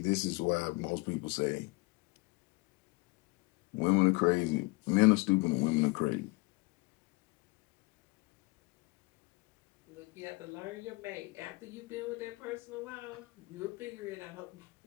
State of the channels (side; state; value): right; quieter; 25.4 dB